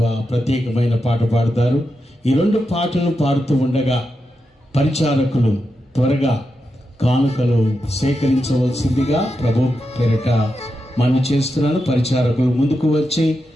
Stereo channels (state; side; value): normal; both; correlation 0.87